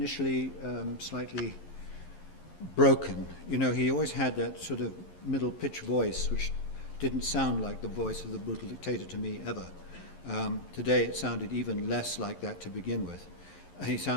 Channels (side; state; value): right; late; 11 ms